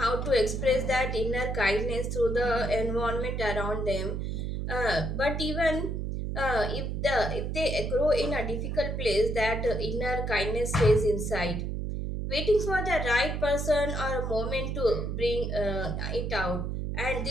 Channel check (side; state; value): right; noise; hum, 2 dB below the sound